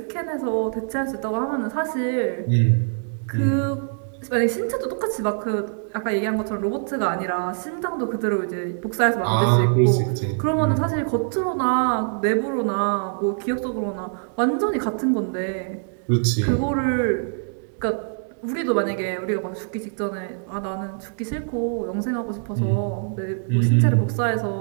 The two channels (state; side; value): silent; left; digital silence